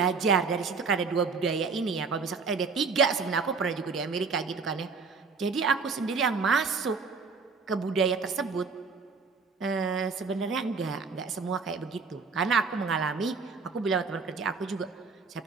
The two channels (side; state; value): left; quieter; 4.9 dB